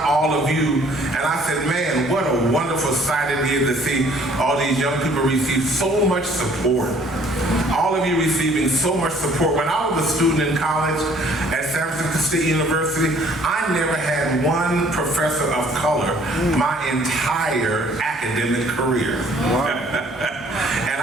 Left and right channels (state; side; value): normal; both; correlation 0.58